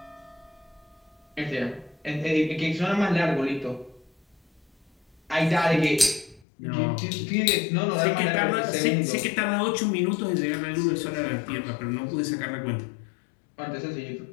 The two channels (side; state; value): right; drops out; at 6.5 s